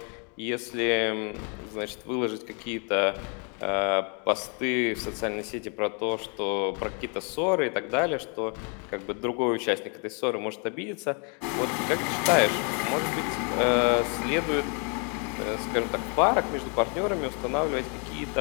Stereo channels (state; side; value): quieter; right; 36.9 dB